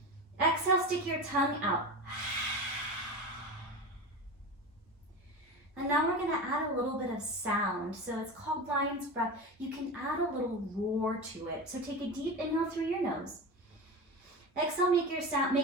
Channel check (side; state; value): both; normal; correlation 0.26